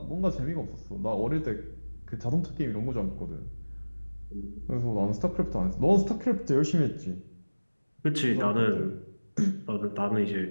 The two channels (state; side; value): inverted; both; correlation -1.00